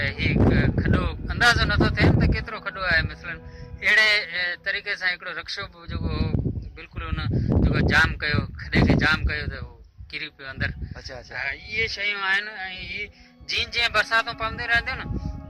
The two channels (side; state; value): both; identical; correlation 1.00